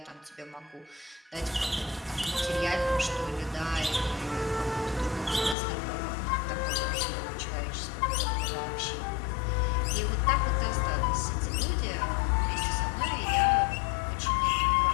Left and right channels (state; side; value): drops out; right; at 5.6 s